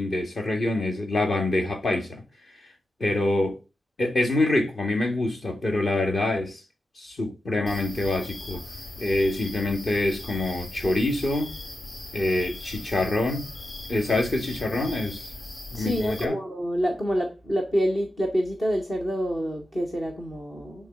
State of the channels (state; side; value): normal; both; correlation 0.89